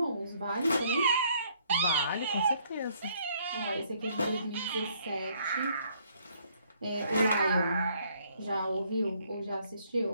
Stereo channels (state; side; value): inverted; both; correlation -0.65